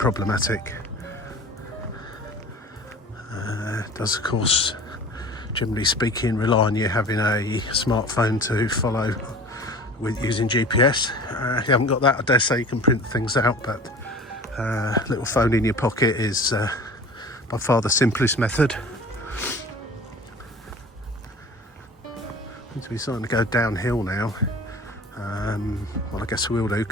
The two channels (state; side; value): normal; both; correlation 0.41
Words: It does, of course, generally speaking, rely on you having a smartphone to follow with using GPS. If you haven't got that, I dare say you can print things out, but little phone in your pocket is by far the simplest method. Seem to be starting to go downhill now. Well, I guess we will do,